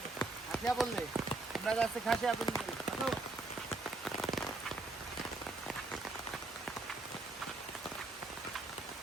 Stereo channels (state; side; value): quieter; left; 3.1 dB